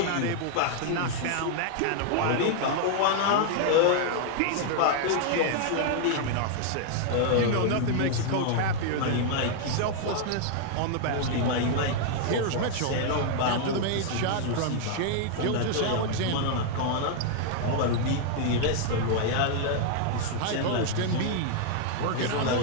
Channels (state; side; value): different; both; correlation 0.00